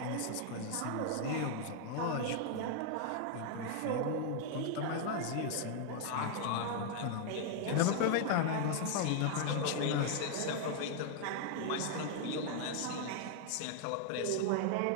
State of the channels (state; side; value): different; both; correlation 0.00